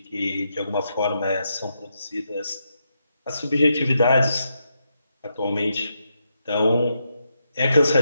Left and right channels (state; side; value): inverted; both; correlation -0.82